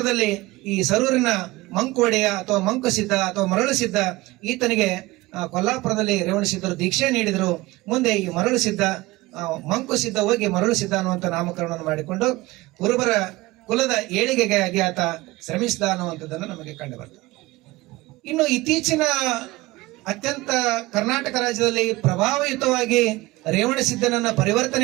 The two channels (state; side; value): quieter; left; 20.2 dB